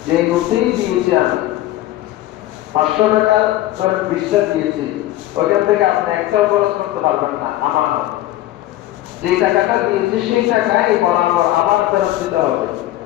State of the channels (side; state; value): right; quieter; 15.1 dB